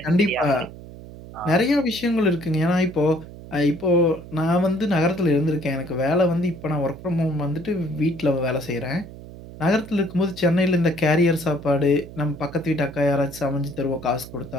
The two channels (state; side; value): noise; right; hum, 15 dB below the sound